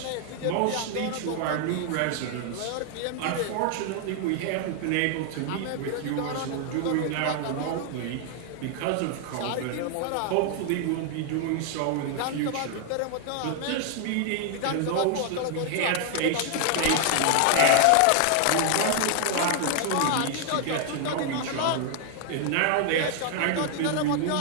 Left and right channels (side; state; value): both; different; correlation 0.00